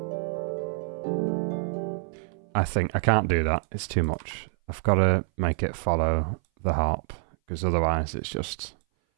I think I can't do that. It's too much. I've got to make it follow the harp, because otherwise it's just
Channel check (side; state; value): left; silent; 58 dB below the other